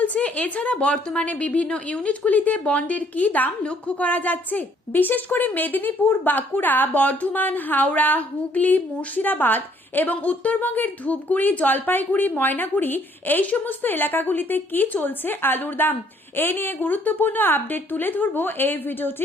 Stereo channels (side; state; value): both; normal; correlation 0.64